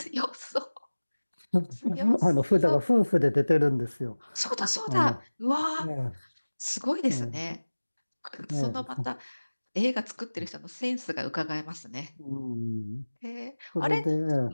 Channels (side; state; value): both; inverted; correlation -1.00